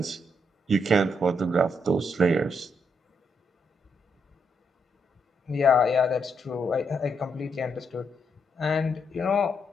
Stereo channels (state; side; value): normal; both; correlation 0.77